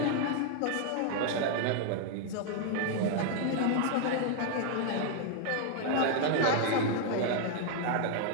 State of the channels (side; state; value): both; different; correlation 0.00